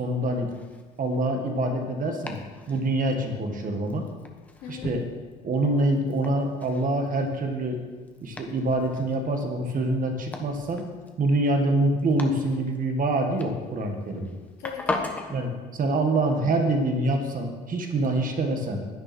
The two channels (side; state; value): both; normal; correlation 0.53